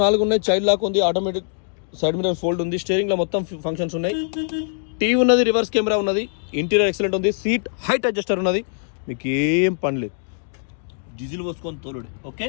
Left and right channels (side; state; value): right; silent; digital silence